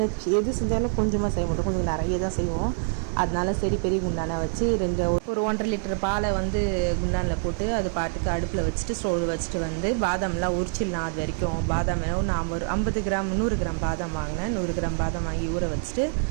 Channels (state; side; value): silent; left; 56 dB below the other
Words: எது செஞ்சாலும் கொஞ்சமாக செய்ய மாட்டோம், கொஞ்சம் நிறைய தான் செய்வோம். அதனால சரி பெரிய குண்டானை வச்சு ஒரு 1.5 லிட்டர் பாலை வந்து குண்டானில் போட்டு அது பாட்டுக்கு அடுப்பில் வச்சுட்டு ஸ்டோவ் வச்சுட்டு வந்து பாதாம்லாம் உரிச்சிடலாம். அது வரைக்கும் பாதாம் நான் ஒரு 50 கிராம் 100 கிராம் பாதாம் வாங்கினேன். 100 கிராம் பாதாம் வாங்கி ஊற வச்சுட்டு